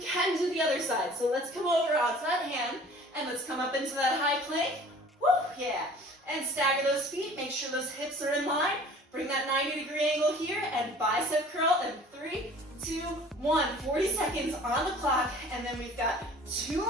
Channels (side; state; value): both; normal; correlation 0.48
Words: do the other side. So let's come over onto that hand, and let's come up into that high plank. Woo, yeah. And stagger those feet. Make sure those hips are in line. Bring that 90-degree angle here, and bicep curl in 3, 2, 1. 40 seconds on the clock, and then we've got 2